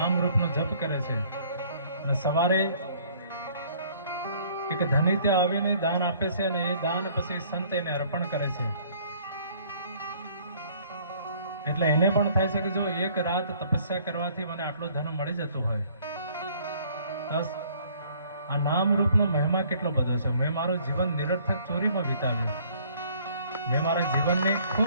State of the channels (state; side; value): inverted; both; correlation -0.58